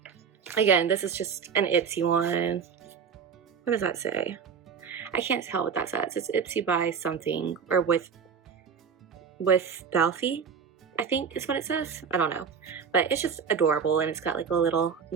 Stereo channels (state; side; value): quieter; left; 6.6 dB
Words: again, this is just an Ipsy one. What does that say? I can't tell what that says. It's Ipsy by something, or with Belfie, I think is what it says. I don't know, but it's just adorable, and it's got like a little